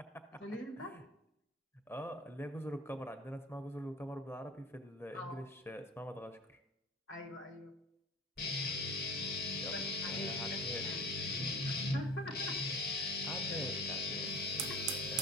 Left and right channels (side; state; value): both; normal; correlation 0.38